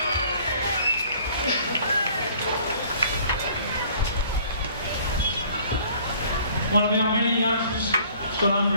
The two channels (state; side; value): inverted; both; correlation -0.55